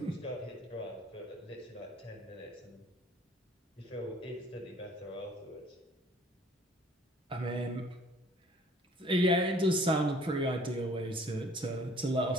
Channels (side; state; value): both; normal; correlation 0.55